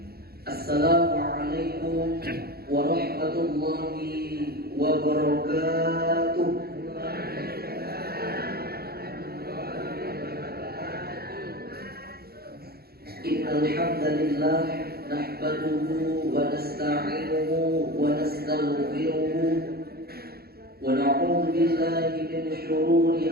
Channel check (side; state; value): left; late; 0.45 ms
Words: Assalamualaikum warahmatullahi wabarakatuh. Innal hamdalillah nahmaduhu wa nasta'inuhu wa nastaghfiruhu wa na'udzu billahi min